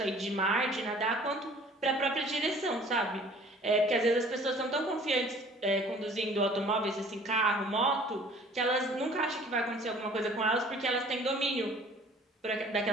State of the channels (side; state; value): both; normal; correlation 0.51